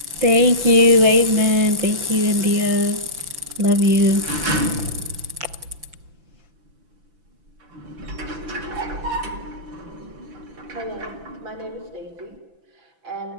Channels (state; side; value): late; left; 5.9 ms